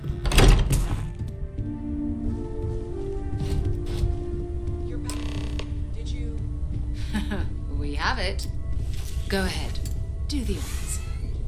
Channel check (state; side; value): identical; both; correlation 1.00